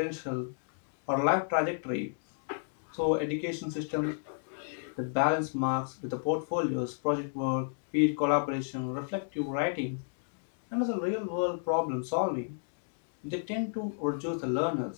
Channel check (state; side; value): silent; right; digital silence